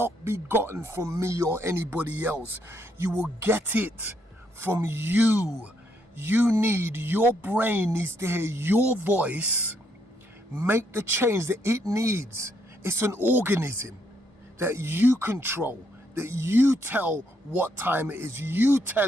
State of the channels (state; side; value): normal; both; correlation 0.74